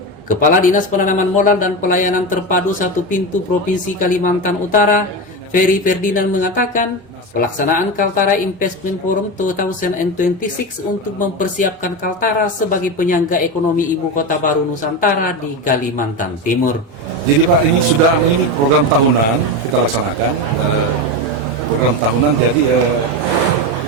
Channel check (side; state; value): both; normal; correlation 0.18